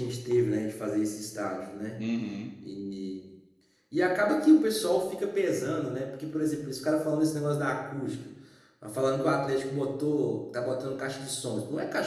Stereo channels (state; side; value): identical; both; correlation 1.00